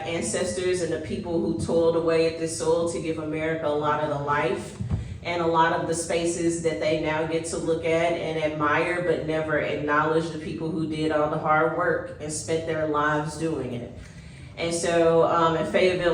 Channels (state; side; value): identical; both; correlation 1.00